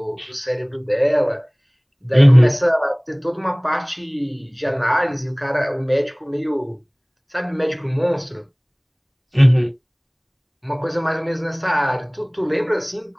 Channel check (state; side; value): identical; both; correlation 1.00